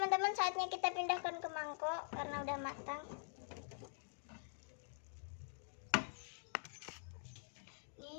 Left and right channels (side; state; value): right; silent; digital silence